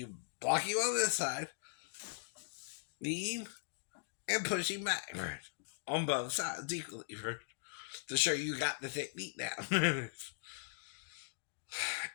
block him on this side, knee him, and push him back, right? On both sides equally, right? To show you got the technique down.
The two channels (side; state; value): right; silent; digital silence